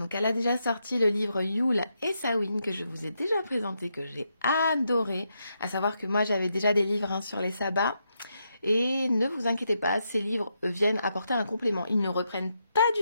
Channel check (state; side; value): inverted; both; correlation -0.82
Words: elle a déjà sorti le livre Yule et Samhain que je vous ai déjà présenté, que j'ai adoré. À savoir que moi j'avais déjà des livres sur les sabbats. Et ne vous inquiétez pas, ces livres viennent apporter un complément. Ils ne reprennent pas